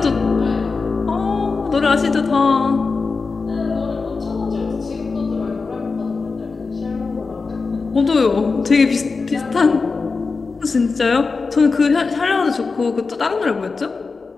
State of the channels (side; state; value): right; quieter; 4.4 dB